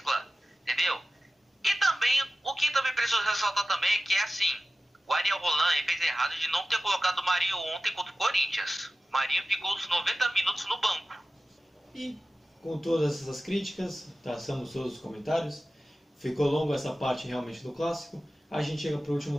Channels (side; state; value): both; normal; correlation 0.95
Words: entendeu? E também, o que também preciso ressaltar também é que o Ariel Holan fez errado de não ter colocado o Marinho ontem contra o Corinthians. O Marinho ficou os 90 minutos no banco. E com todas essas críticas, traçamos todos os comentários, ficou longo essa parte realmente do Clássico, a gente chega para o